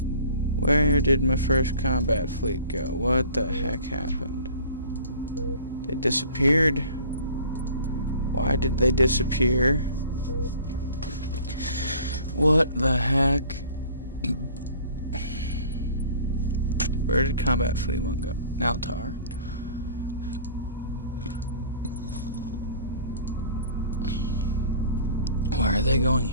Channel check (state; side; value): inverted; both; correlation -0.47